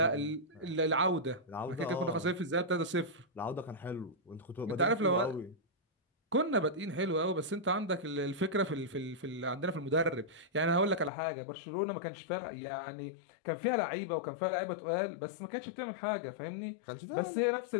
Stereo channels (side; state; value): right; drops out; at 11.1 s